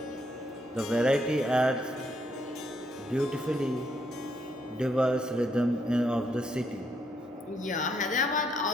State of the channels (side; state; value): both; normal; correlation 0.74